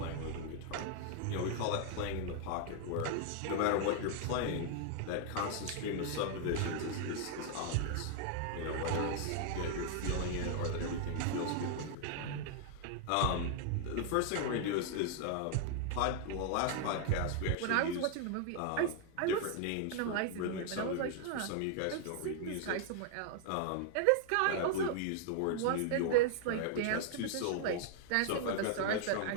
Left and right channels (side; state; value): both; different; correlation 0.00